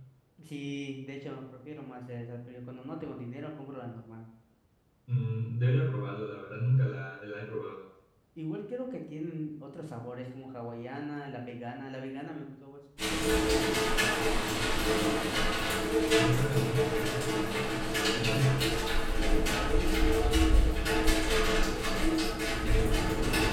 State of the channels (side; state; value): both; identical; correlation 1.00